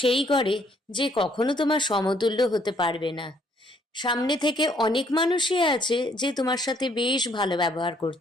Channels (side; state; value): both; normal; correlation 0.66